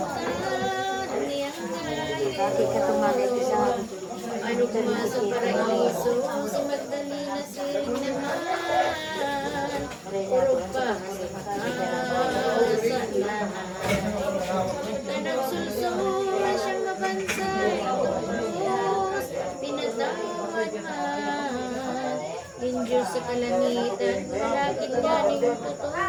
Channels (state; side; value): identical; both; correlation 1.00